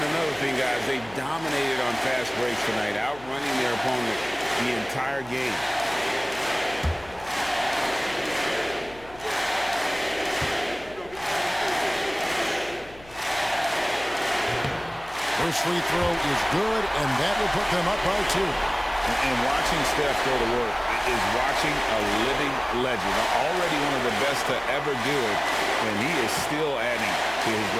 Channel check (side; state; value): left; noise; hum, 22 dB below the sound